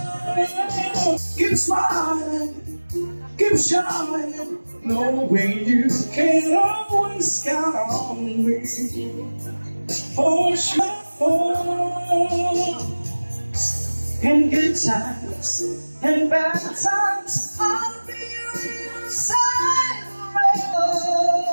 keep smiling. Keep shining, knowing you can always count on me. For sure, in good times and bad times, I'll be your side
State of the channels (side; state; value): both; inverted; correlation -1.00